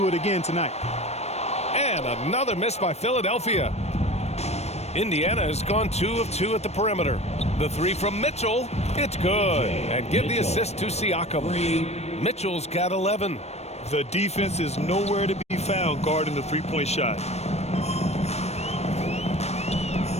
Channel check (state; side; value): late; right; 0.31 ms